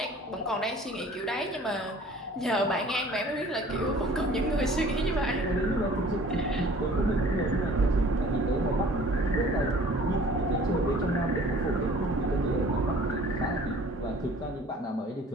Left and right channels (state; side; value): normal; both; correlation 0.50